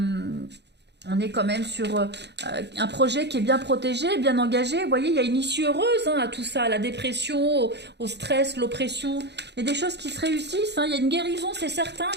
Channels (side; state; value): left; late; 0.50 ms